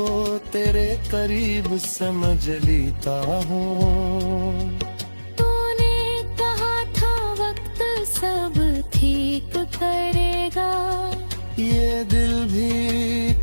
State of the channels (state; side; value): inverted; both; correlation -1.00